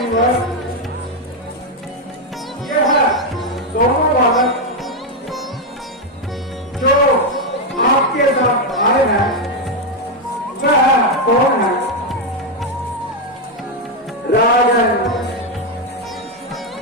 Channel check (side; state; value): both; normal; correlation 0.04